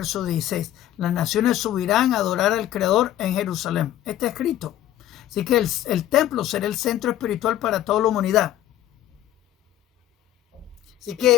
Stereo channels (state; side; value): quieter; right; 12.7 dB